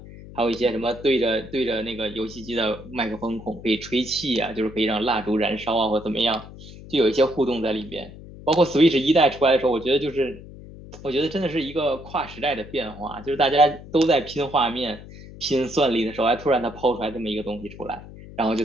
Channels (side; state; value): left; noise; hum, 16 dB below the sound